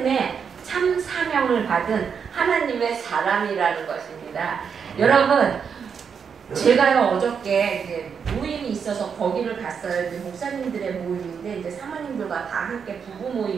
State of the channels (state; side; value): quieter; left; 6.7 dB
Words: 참 사명을 받은 하나님의 사람이라는 것입니다. 여러분, 제가요 어저께 이제 모임이 있어서 거기를 갔어요. 이제 목사님들의 모임인데 이제 사모님들과 다 함께 부부